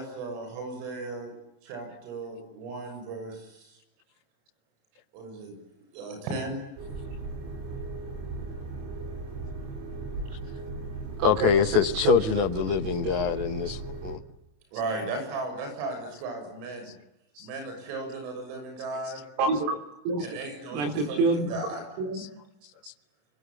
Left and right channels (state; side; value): late; left; 28 ms